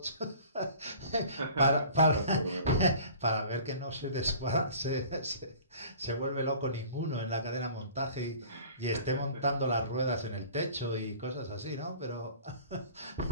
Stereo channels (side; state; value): both; inverted; correlation -0.46